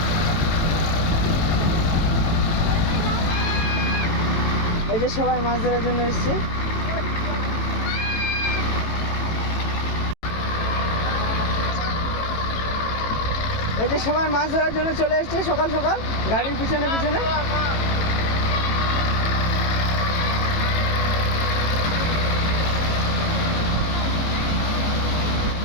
এই যে সবাই মাছ ধরার জন্য এসছে। এই যে সবাই মাছ ধরার জন্য চলে এসছে সকাল সকাল গাড়ির পিছনে পিছনে।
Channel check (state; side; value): late; right; 18 ms